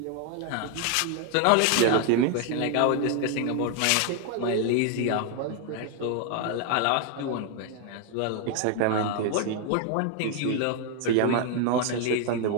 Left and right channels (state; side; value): different; both; correlation 0.00